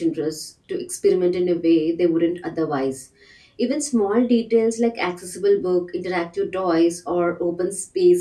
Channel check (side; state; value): both; identical; correlation 1.00